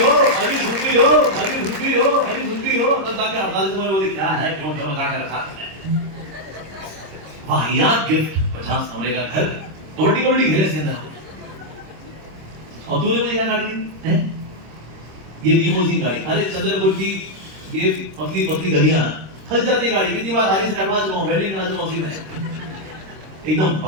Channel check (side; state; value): left; late; 26 ms